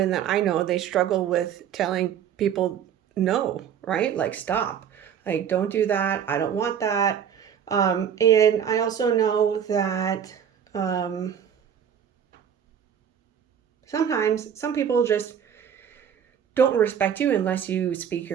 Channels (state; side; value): quieter; left; 8.6 dB